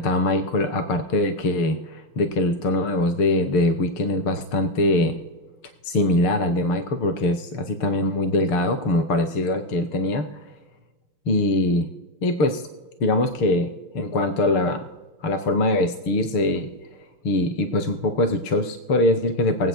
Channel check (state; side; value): late; right; 6.6 ms